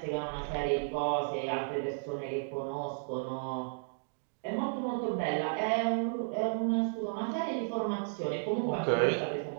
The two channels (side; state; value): left; silent; digital silence